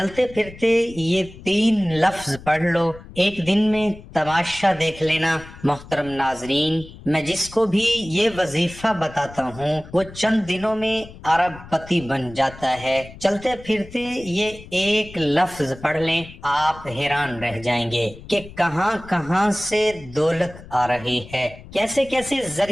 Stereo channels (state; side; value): noise; left; rumble, 17 dB below the sound